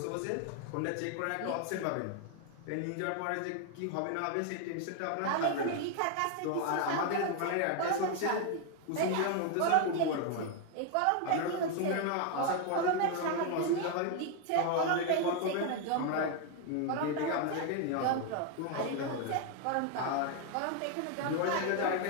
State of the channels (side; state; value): both; different; correlation 0.01